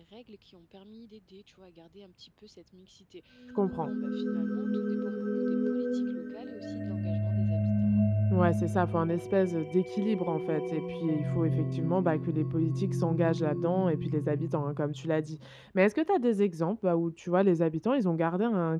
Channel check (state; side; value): identical; both; correlation 1.00